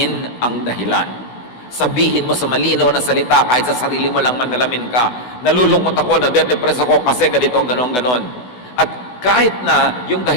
ang dahilan. Sabihin mo sa malinaw na salita, kahit sa sarili mo lang manalamin ka, nalulungkot ako, nade-depress ako kasi ganito, ganon. At kahit na yung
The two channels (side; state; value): right; late; 16 ms